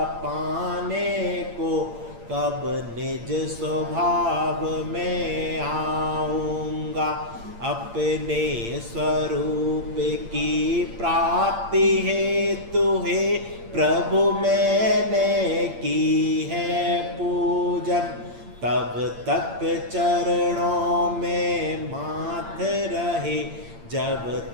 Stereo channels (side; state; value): left; late; 8.7 ms